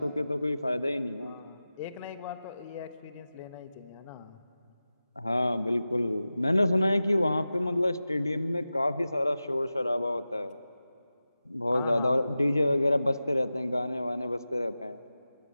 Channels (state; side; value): inverted; both; correlation -0.94